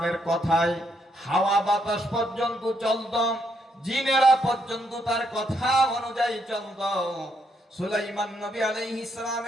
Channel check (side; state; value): both; normal; correlation 0.75